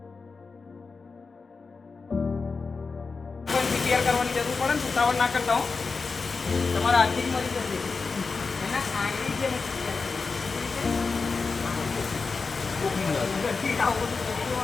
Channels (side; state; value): right; quieter; 4.5 dB